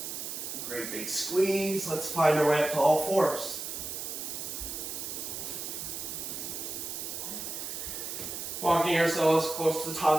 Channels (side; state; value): right; noise; hiss, 6 dB below the sound